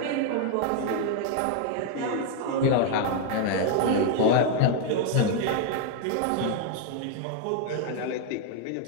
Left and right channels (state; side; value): different; both; correlation 0.00